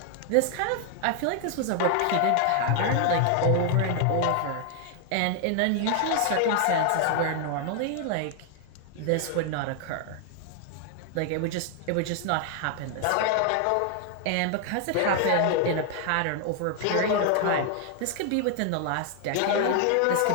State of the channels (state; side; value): different; both; correlation 0.00